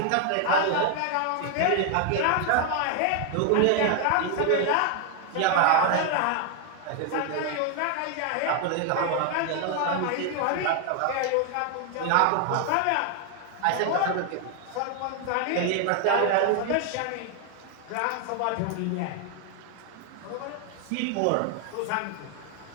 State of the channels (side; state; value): both; different; correlation 0.00